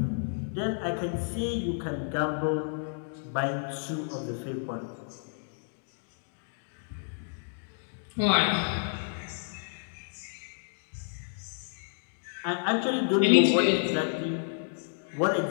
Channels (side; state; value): right; silent; digital silence